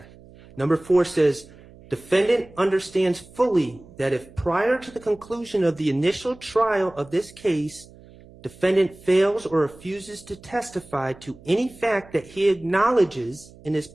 Number 4 says, defendant understands fully that if prior to the conclusion of the initial trial of this case, defendant fails or refuses to testify to any fact that he acknowledges in his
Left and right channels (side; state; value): right; noise; hum, 22 dB below the sound